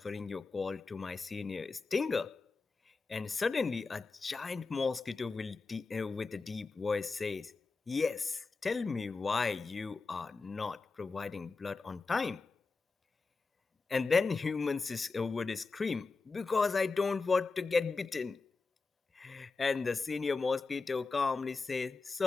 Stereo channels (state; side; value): quieter; right; 4.1 dB